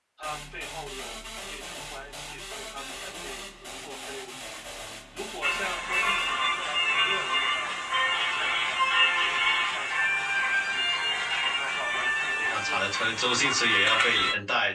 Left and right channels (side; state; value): both; identical; correlation 1.00